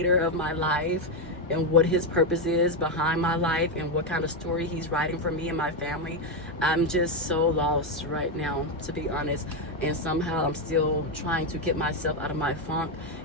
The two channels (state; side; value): normal; both; correlation 0.06